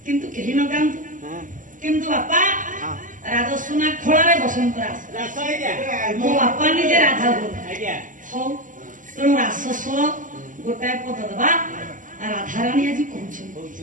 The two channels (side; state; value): left; late; 0.38 ms